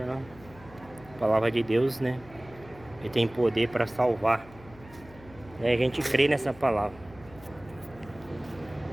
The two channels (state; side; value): noise; left; hum, 21 dB below the sound